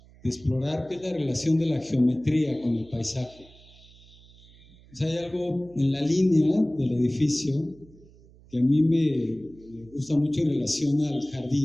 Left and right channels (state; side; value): noise; right; hum, 25 dB below the sound